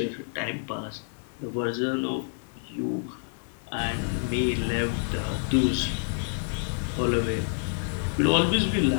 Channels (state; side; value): silent; right; 59 dB below the other